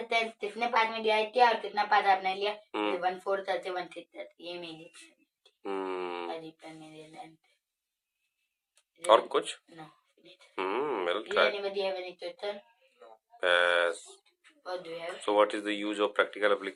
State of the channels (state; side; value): identical; both; correlation 1.00